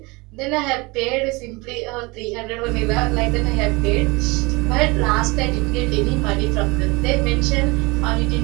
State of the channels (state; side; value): quieter; left; 25.5 dB